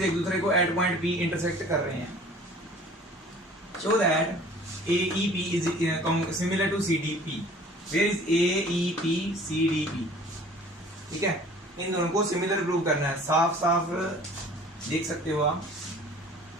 एक दूसरे को at point P intersect कर रहे हैं. Show that AEP is similar to CDP. Where is AEP CDP? ठीक है, इन दोनों को सिमिलर प्रूव करना है. साफ साफ देख सकते हो आप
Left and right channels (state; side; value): normal; both; correlation 0.49